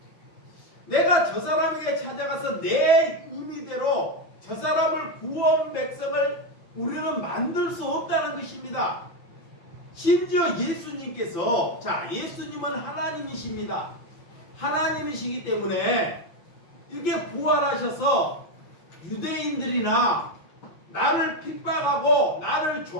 내가 저 사람에게 찾아가서 내 의미대로 저 사람을 구원 백성을 우리는 만들 수 없다는 것입니다. 심지어 예수님께서, 자, 예수님은 하나님이십니다. 하나님이시기 때문에 이렇게 부활하셔서 유대인들이나 나를 핍박하고 나를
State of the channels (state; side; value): late; right; 5.9 ms